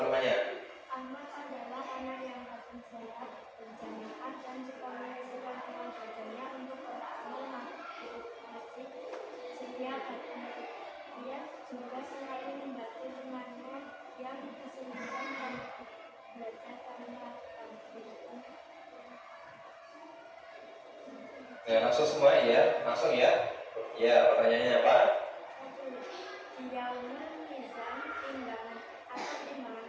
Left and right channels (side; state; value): both; identical; correlation 1.00